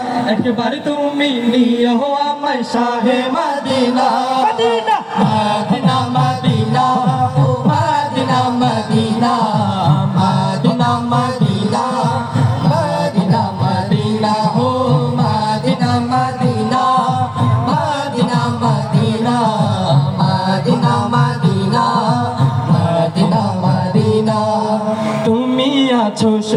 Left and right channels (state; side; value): identical; both; correlation 1.00